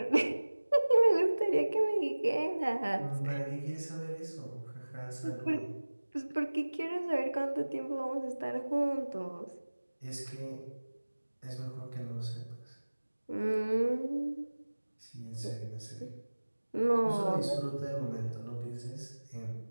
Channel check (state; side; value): inverted; both; correlation -1.00